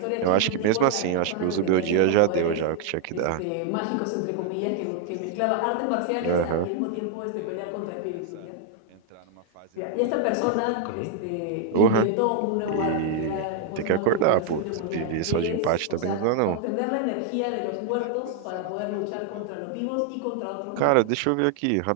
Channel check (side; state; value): both; different; correlation 0.00